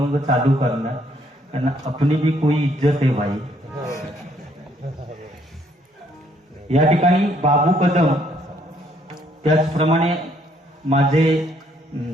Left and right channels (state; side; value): normal; both; correlation 0.67